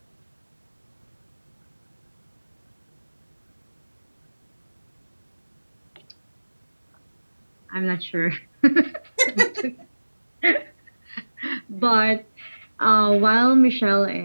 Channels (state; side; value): inverted; both; correlation -1.00